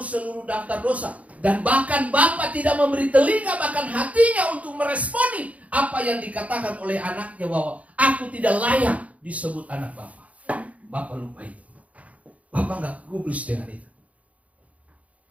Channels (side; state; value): left; late; 0.067 ms